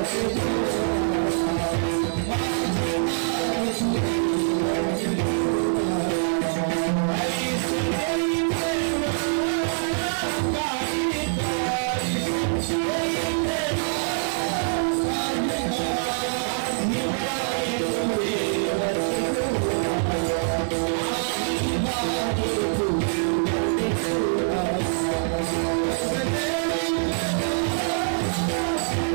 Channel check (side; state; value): left; silent; 56 dB below the other